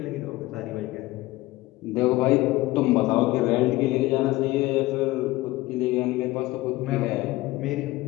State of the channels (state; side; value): quieter; right; 18.9 dB